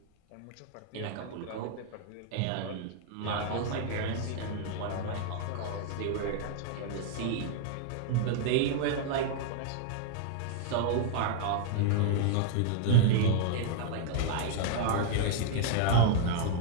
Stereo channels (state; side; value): different; both; correlation 0.00